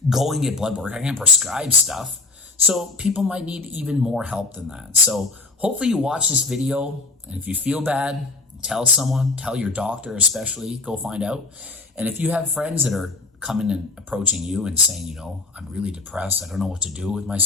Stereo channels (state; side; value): quieter; right; 3.6 dB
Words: go and get blood work. I can't prescribe stuff. So people might need even more help than that. So hopefully you watch this video, and if you feel bad, tell someone, tell your doctor especially, go find out. And if you have friends that are coming and approaching you and saying, I'm really depressed, I don't know what to do with